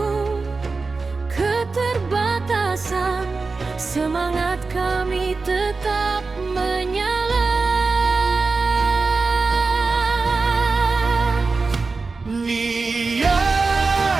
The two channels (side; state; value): left; quieter; 4.1 dB